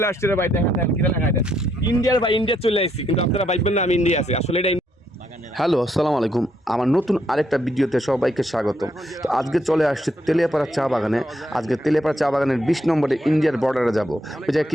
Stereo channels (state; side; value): normal; both; correlation 0.74